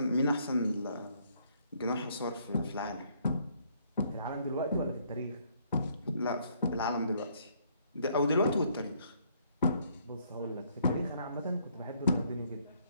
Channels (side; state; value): both; inverted; correlation -0.67